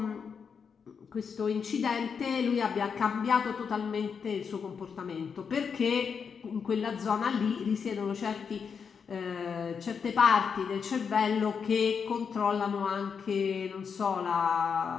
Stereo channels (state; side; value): quieter; right; 6.3 dB